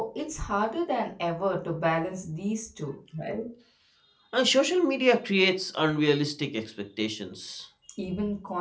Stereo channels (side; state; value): both; identical; correlation 1.00